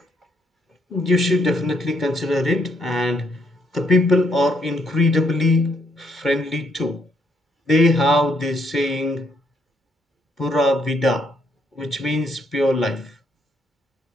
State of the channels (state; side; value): normal; both; correlation 0.72